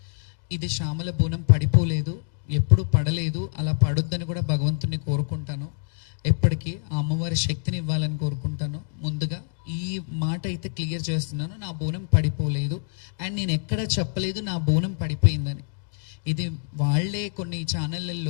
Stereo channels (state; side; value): silent; right; digital silence